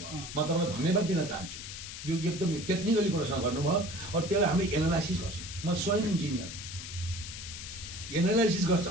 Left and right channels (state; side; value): noise; left; hiss, 10 dB below the sound